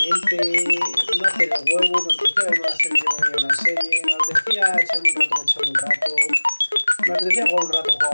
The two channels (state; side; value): inverted; both; correlation -1.00